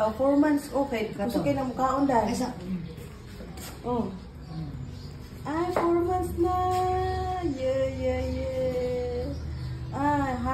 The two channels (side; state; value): both; identical; correlation 1.00